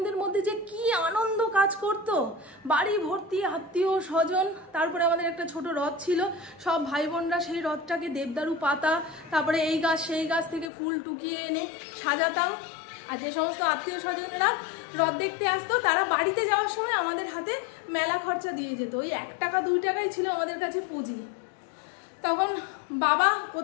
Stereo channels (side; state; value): right; drops out; at 10.7 s